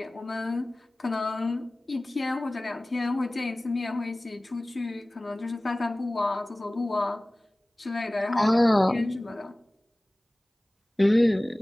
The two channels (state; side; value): normal; both; correlation 0.98